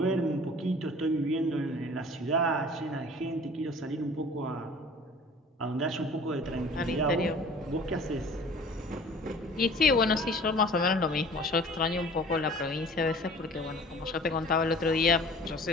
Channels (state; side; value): normal; both; correlation 0.47